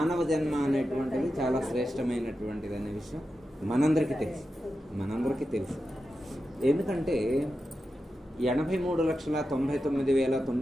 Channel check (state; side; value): normal; both; correlation 0.90